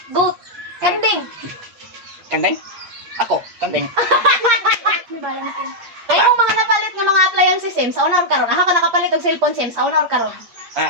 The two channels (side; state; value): left; late; 8.5 ms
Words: Goat. Kambing. Kandeng. Ako. Kandeng. May balance yun. Ay, yung mga napalit ng mga appliances sim, sa una or karon. Aha ka nakapalit og cellphone sim, sa una or karon.